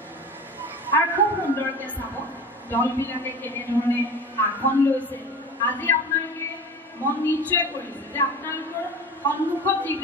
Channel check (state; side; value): normal; both; correlation 0.33